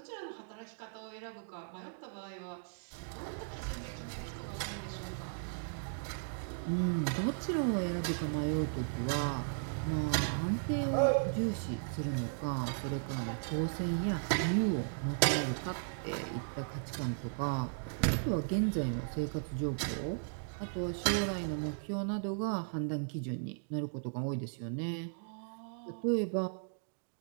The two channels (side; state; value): left; silent; digital silence